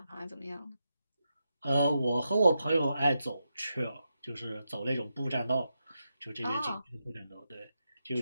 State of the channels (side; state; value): both; inverted; correlation -0.87